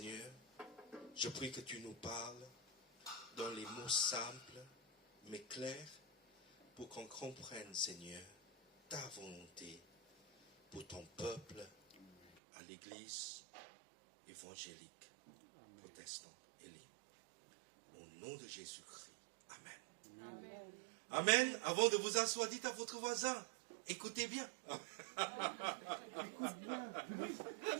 je prie que tu nous parles dans les mots simples, mais clairs, pour qu'on comprenne, Seigneur, ta volonté pour ton peuple à l'Église évangélique, protestante et libre. Au nom de Jésus-Christ. Amen. Amen. Amen. Avant de vous asseoir, dites à votre voisin, écoutez bien.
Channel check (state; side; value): drops out; left; at 12.3 s